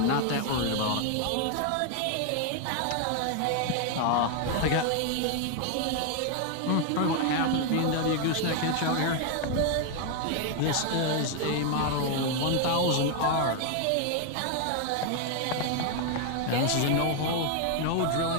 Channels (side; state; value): both; different; correlation 0.01